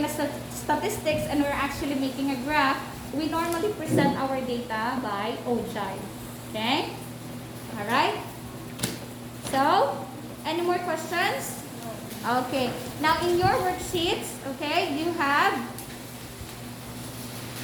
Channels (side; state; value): both; identical; correlation 1.00